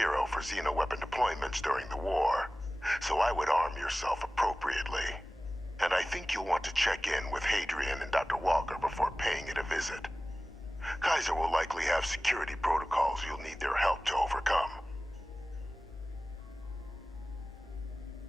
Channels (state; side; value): normal; both; correlation 0.97